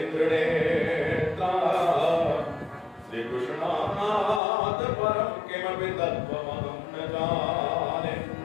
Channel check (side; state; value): right; drops out; at 4.4 s